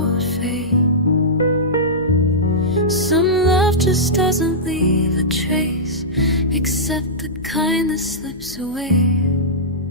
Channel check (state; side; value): noise; left; hum, 23 dB below the sound